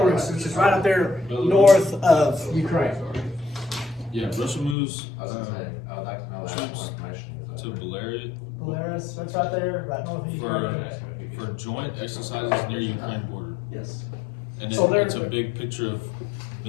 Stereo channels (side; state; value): right; drops out; at 4.8 s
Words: which is right up there north of Ukraine. Yeah, Russia moves. I was gonna say, I would like to know that. So it's right there, right north of Ukraine. For joint exercises near Ukraine border. Yes. And So it's a they're- big picture of